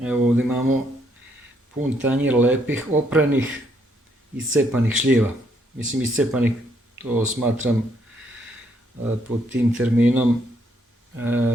Evo ovdje imamo pun tanjir lepih, opranih, iscepanih šljiva. Mislim, iscepanih, to smatram pod tim terminom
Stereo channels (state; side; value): normal; both; correlation 0.71